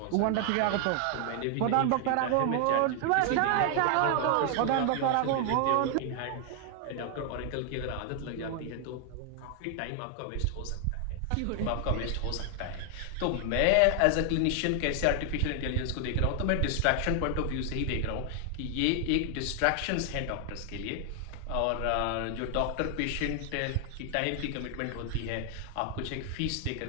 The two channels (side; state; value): both; different; correlation 0.00